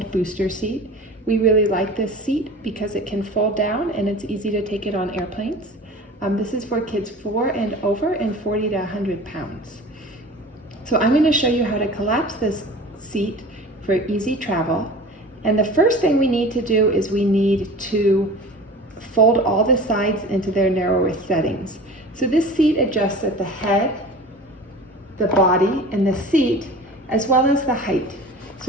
booster seat. We really like this seat because it can fold down and it's easy to take it on airplanes. This is for kids 4 and over and 40 to 100 pounds. So I'm going to show you how to collapse this seat for easy travel. And the first thing we need to do is we need to fold all the sides into their narrowest settings. So this seat adjusts at the head, the body, and the seat, as well as the height.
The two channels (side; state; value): both; normal; correlation 0.38